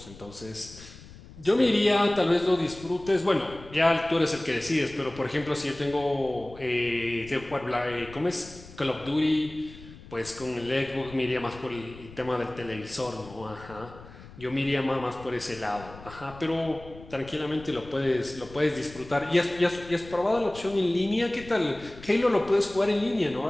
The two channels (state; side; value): noise; left; rumble, 18 dB below the sound